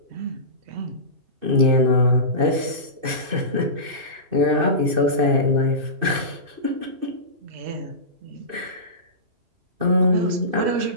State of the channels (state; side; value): late; left; 2.6 ms